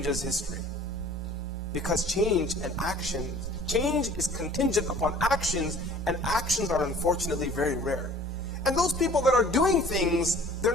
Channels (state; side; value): normal; both; correlation 0.49